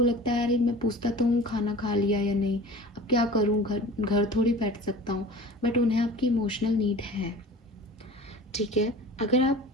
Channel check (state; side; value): normal; both; correlation 0.40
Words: लगता है अरे मैं पूछता तो हूँ खाना खा लिया या नहीं, अब क्या करूँ, घर थोड़ी बैठ सकता हूँ, बट उन्हें आपकी इमोशनल नीड है। ठीक है, अगर आप